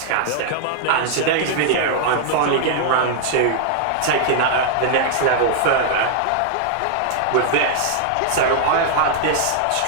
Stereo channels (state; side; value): different; both; correlation -0.01